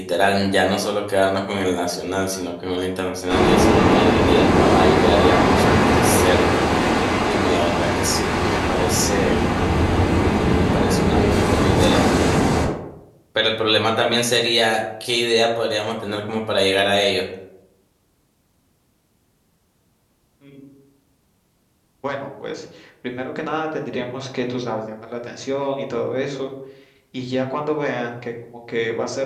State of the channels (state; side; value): identical; both; correlation 1.00